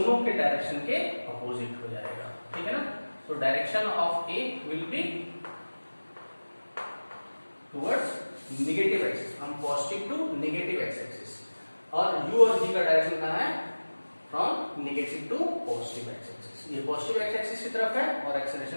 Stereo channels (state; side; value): inverted; both; correlation -1.00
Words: के डायरेक्शन के अपोजिट हो जाएगा, ठीक है ना। तो direction of a will be towards negative axis, हम positive to negative x axis, और u और v का डायरेक्शन कहाँ है, from negative to positive x axis. ये पॉजिटिव एक्स एक्सिस की तरफ है और